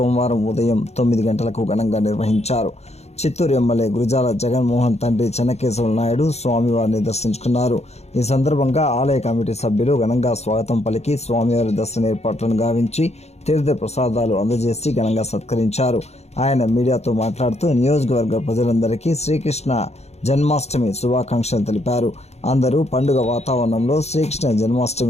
ఉదయం 9 గంటలకు ఘనంగా నిర్వహించారు. చిత్తూరు ఎమ్మెల్యే గురజాల జగన్మోహన్ తండ్రి చెన్నకేశవ నాయుడు స్వామివారిని దర్శించుకున్నారు. ఈ సందర్భంగా ఆలయ కమిటీ సభ్యులు ఘనంగా స్వాగతం పలికి స్వామివారి దర్శన ఏర్పాట్లను గావించి తీర్థ ప్రసాదాలు అందజేసి ఘనంగా సత్కరించారు. ఆయన మీడియాతో మాట్లాడుతూ నియోజకవర్గ ప్రజలందరికీ శ్రీకృష్ణ జన్మాష్టమి శుభాకాంక్షలు తెలిపారు. అందరూ పండుగ వాతావరణంలో శ్రీకృష్ణ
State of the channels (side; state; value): right; late; 0.31 ms